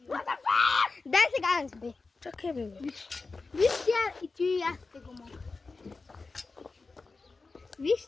Дай сега аз, бе. Чакай, бе. Вижте и ти и аз ще го мога.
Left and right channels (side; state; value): right; quieter; 4.0 dB